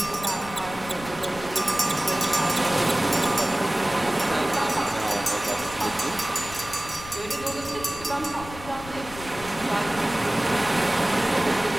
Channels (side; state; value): left; noise; rumble, 15 dB below the sound